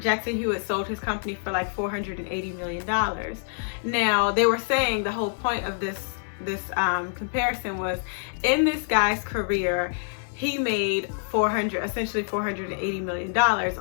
Jackson Hewitt sold his company for like $480 million. Now, they were saying the whole point of this comparison was, in this guy's career, he made essentially $480 million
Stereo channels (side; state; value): right; silent; digital silence